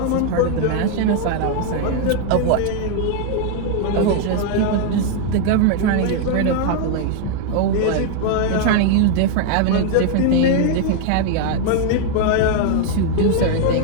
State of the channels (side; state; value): both; different; correlation 0.00